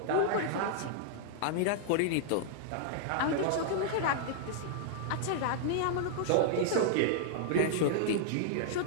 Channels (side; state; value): both; different; correlation -0.01